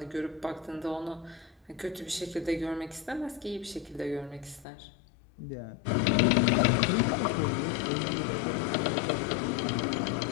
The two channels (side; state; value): right; drops out; at 4.7 s